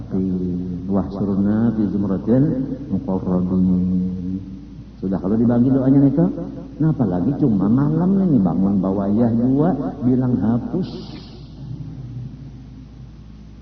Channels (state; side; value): identical; both; correlation 1.00